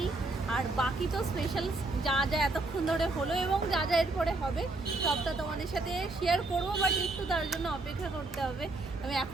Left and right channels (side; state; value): left; quieter; 3.1 dB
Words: আর বাকি তো স্পেশাল যা যা এতক্ষণ ধরে হলো এবং যা যা এরপরে হবে সবটা তোমাদের সাথে শেয়ার করবো, বাট একটু তার জন্য অপেক্ষা করতে হবে। আমি